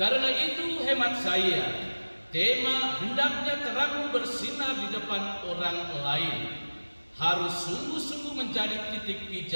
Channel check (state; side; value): inverted; both; correlation -1.00